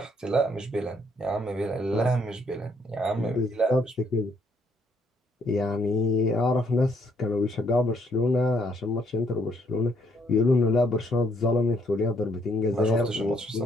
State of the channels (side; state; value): both; normal; correlation 0.69